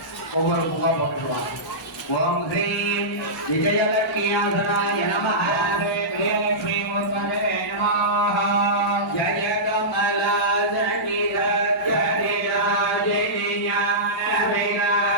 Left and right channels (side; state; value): both; normal; correlation -0.17